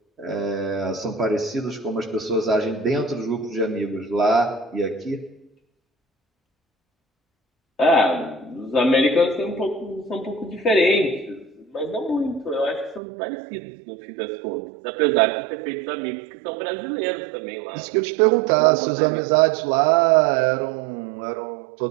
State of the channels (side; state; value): left; drops out; at 13.0 s